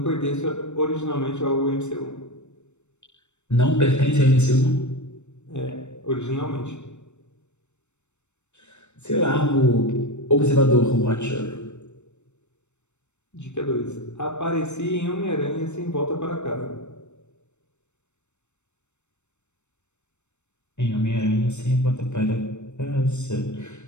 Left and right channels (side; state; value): right; late; 0.83 ms